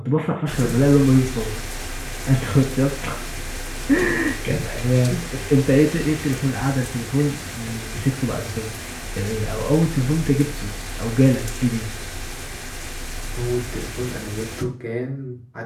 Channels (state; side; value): identical; both; correlation 1.00